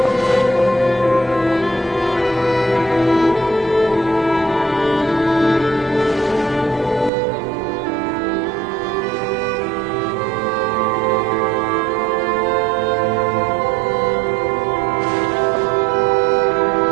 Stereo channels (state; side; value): drops out; left; at 7.1 s